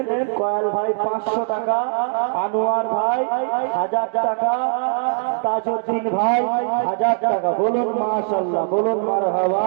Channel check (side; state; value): left; silent; digital silence